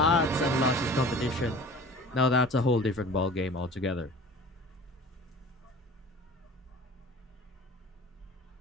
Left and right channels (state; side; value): normal; both; correlation 0.42